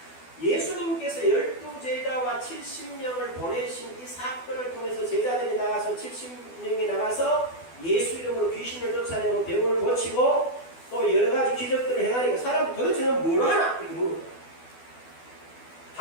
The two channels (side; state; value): right; late; 12 ms